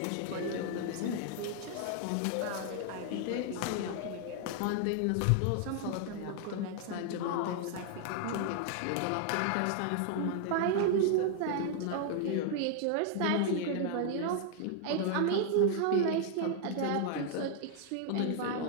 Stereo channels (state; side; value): different; both; correlation 0.00